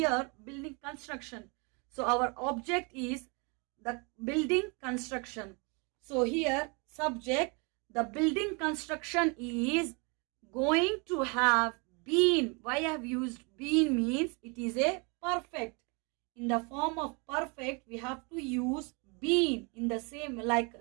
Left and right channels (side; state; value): left; quieter; 31.9 dB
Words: building construction. So our object is the building construction. So here subject, the building construction is going to have been. Why I have used been means it is a perfect. In the form of perfect we have to use been in the same, like